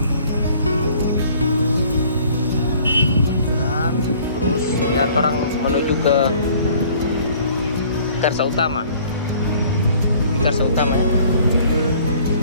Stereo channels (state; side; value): inverted; both; correlation -0.54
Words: Terus lihat orang menuju ke Karsa Utama. Ini Karsa Utama ya.